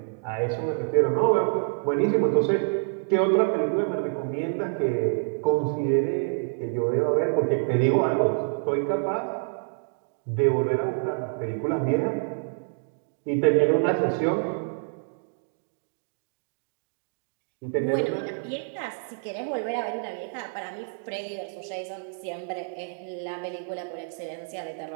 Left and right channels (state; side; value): silent; left; digital silence